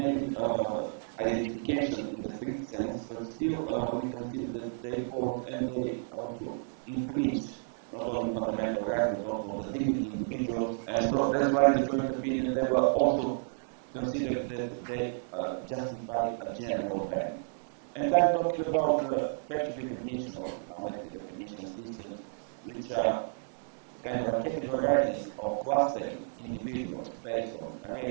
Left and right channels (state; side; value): silent; left; digital silence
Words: identification in the strict sense, but still we consider that they pose and they also infringe not only on fundamental rights, but also on the dignity of individuals. And that's why in the joint opinion, they were also considered that they justify a general ban. And I'm talking about facial recognition or biometric recognition systems, which are kind of a categorizing or clustering individuals based on